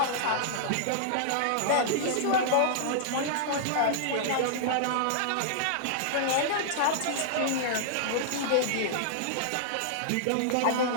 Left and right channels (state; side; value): different; both; correlation -0.01